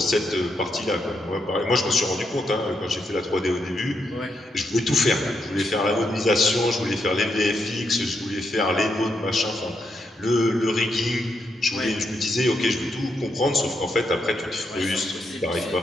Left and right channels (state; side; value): normal; both; correlation 0.80